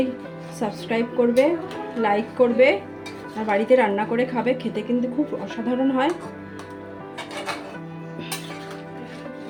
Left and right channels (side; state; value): both; identical; correlation 1.00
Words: সাবস্ক্রাইব করবে, লাইক করবে, আর বাড়িতে রান্না করে খাবে। খেতে কিন্তু খুব অসাধারণ হয়।